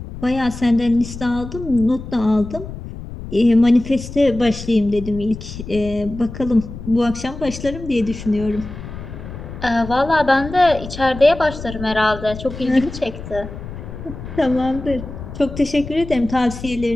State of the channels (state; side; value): noise; left; rumble, 11 dB below the sound